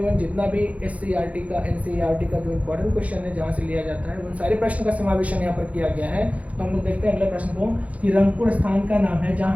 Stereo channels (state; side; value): late; left; 0.067 ms